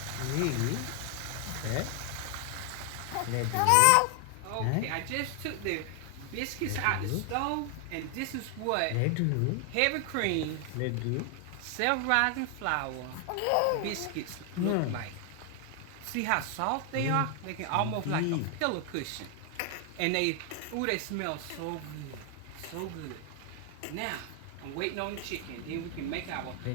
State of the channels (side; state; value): both; different; correlation 0.00